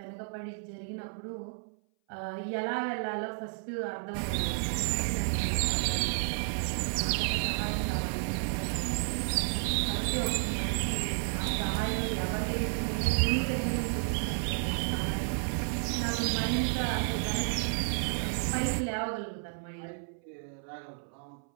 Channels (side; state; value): left; silent; 57 dB below the other